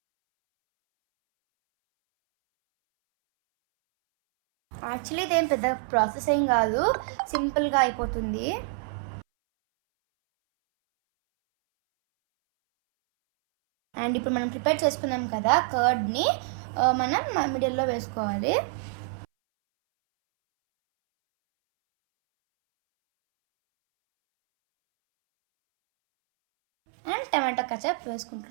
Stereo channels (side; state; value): left; silent; 61 dB below the other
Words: యాక్చువల్లీ ఇదేం పెద్ద ప్రాసెస్ ఏం కాదు, సింపుల్గా అయిపోతుంది. అండ్ ఇప్పుడు మనం ప్రిపేర్ చేసుకున్నాం కదా కర్డ్ని, మనం మిడిల్లో వేసుకోవాలి. అండ్ టమాటో కచప్